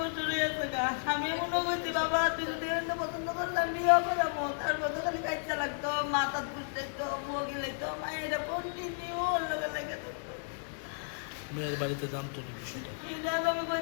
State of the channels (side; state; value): right; silent; digital silence